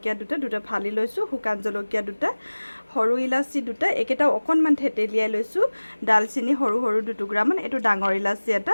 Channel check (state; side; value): inverted; both; correlation -1.00